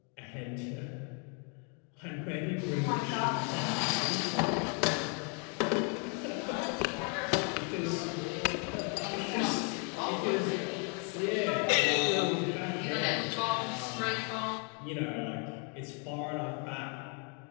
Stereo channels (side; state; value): right; quieter; 37.9 dB